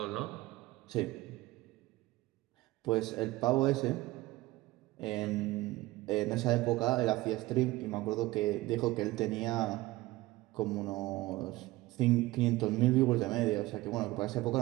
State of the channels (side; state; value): left; quieter; 18.8 dB